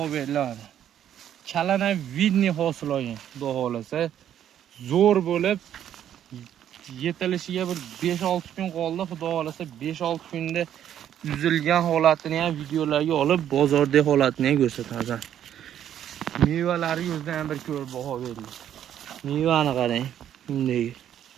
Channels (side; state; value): left; quieter; 10.3 dB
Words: beriladi. Chalana vidniy hosil olgan, xudo xolasa zo'r bo'lib yetilishiga bir 5-6 kun qoldi. Xudo xolasa 5-6 kunda uzilgan holatini ham videolarga olib, bozordagi holatini ham ko'rsatamiz. Mevalari o'zidan ham bir ko'rib baho berdik. Mevani qarang. Bunday.